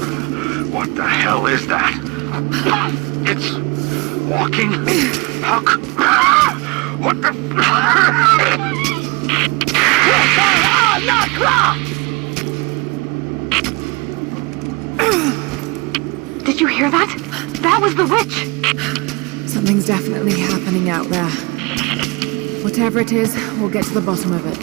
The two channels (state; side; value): quieter; left; 26.7 dB